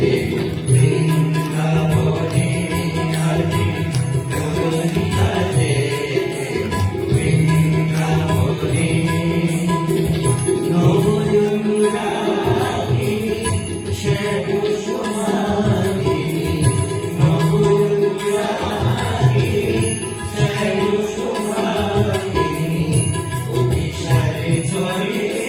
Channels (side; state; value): both; identical; correlation 1.00